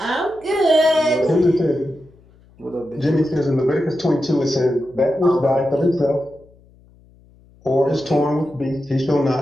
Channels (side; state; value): left; noise; hum, 28 dB below the sound